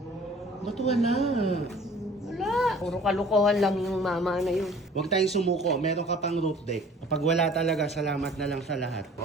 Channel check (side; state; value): both; normal; correlation 0.50